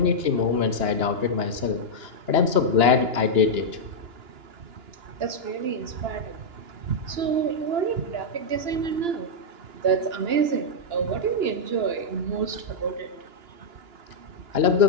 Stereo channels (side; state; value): left; late; 2.9 ms